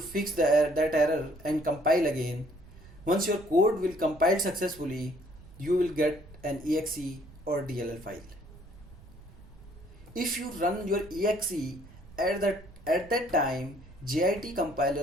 that error and compile again. Once your code will compile successfully, you will get an exe or DLL file. If you run your exe at that time, JIT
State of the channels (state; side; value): noise; right; rumble, 20 dB below the sound